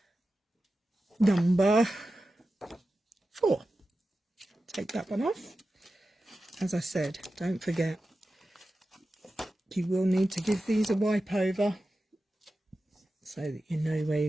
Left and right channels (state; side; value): normal; both; correlation 0.93